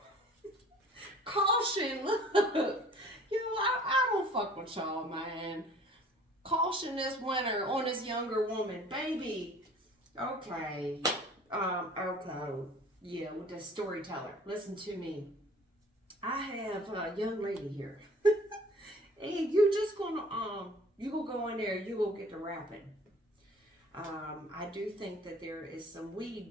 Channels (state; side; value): normal; both; correlation 0.50